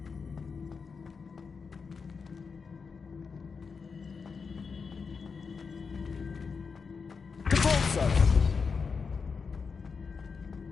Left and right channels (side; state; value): right; quieter; 5.3 dB